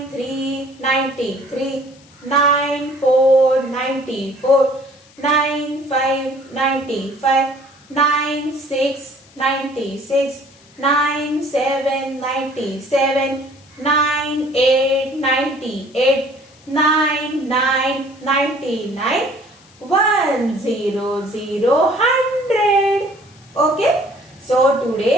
3 93, 9 4 94, 9 5 95, 9 6 96, 9 7 97, 9 8 98, 9 9 99, 1 0 0 100. Okay, so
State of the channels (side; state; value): left; noise; hiss, 27 dB below the sound